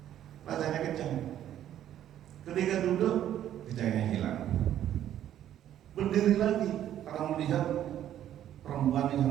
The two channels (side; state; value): left; quieter; 11.3 dB